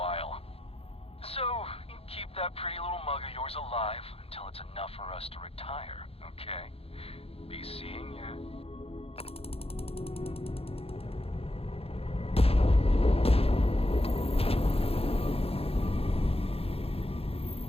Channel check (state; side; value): late; right; 0.28 ms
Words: So, you keep that pretty little mug of yours alive until it's enough for us to retire, okay? Be seeing ya.